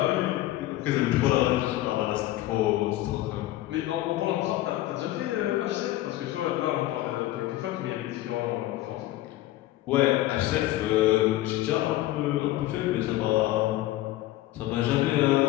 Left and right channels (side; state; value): right; quieter; 15.8 dB